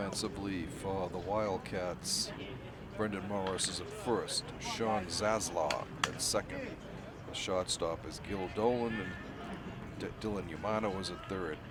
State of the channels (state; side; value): identical; both; correlation 1.00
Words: for the Wildcats, Brendan Morris is at first, Sean Zaslaw at second. The shortstop is Gil Dolan, and Dylan Yamano is at third.